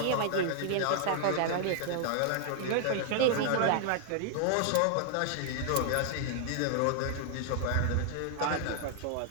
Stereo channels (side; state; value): both; different; correlation 0.00